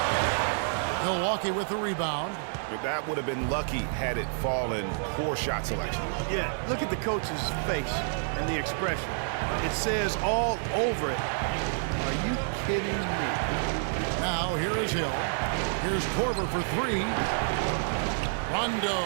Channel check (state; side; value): silent; left; 58 dB below the other